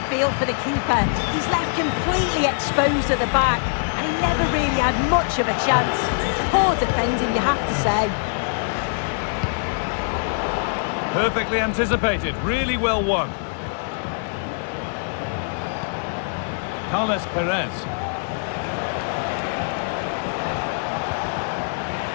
feel for the keeper. He's left completely exposed at the back, and he never really had much of a chance. Poor defending, you have to say. Perfectly anticipated. Really well won. Carles Perez.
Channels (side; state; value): right; silent; digital silence